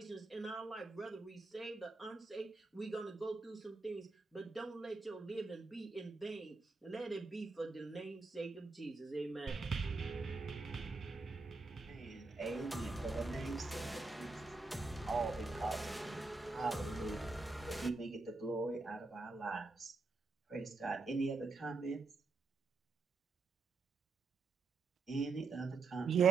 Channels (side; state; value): left; quieter; 3.9 dB